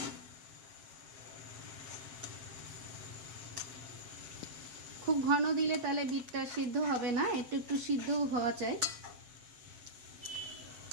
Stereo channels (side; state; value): left; late; 8.3 ms